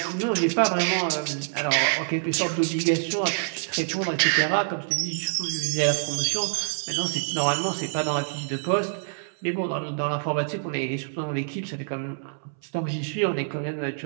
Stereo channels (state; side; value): silent; left; 61 dB below the other